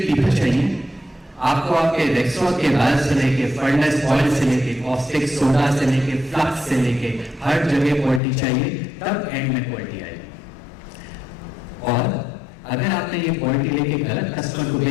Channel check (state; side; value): drops out; right; at 8.2 s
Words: पीपल चाहिए। आपको आपके रेक्सवा के बाल से लेके फर्नेस ऑयल से लेके कॉस्टिक सोडा से लेके फ्लक्स से लेके हर जगह क्वालिटी चाहिए, तब एंड में क्वालिटी आएगी। और अगर आपने ये क्वालिटी लेके गलत कस्टमर को